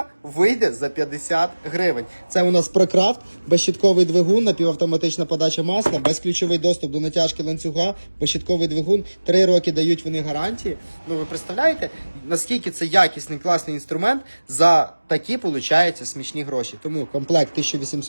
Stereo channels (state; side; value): inverted; both; correlation -1.00